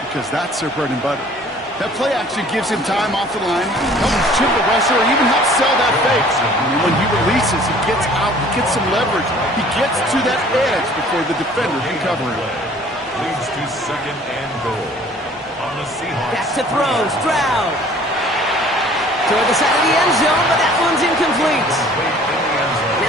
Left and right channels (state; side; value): normal; both; correlation 0.52